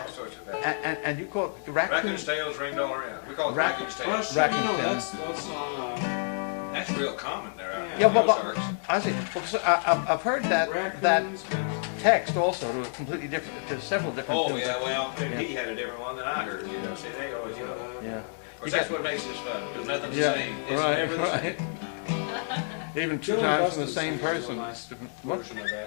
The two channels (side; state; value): right; silent; 59 dB below the other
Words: sorts of that. And you called raccoon. Raccoon's tails ringed all around. We call it raccoon's tails. Well, sure, you know, that's on, That's real common there out Yeah, in the but Ozarks. I see. Because I've heard that text also to a completely different, to several different. Oh, yeah, well, he had a different one than I heard, you know. See, they always, you know. Yeah. Of course, that's what makes this fun, because nothing's the Yeah, same. It's right, never the right. same. Even two Dylan times from Buston the same sings a real person. nice version of